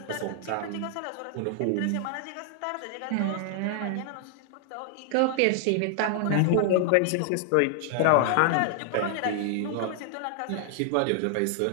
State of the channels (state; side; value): different; both; correlation 0.00